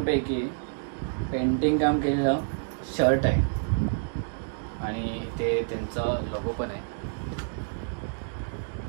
पेंटिंग काम केलेलं शर्ट आहे, आणि ते त्यांचं लोगो पण आहे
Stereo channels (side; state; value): left; silent; digital silence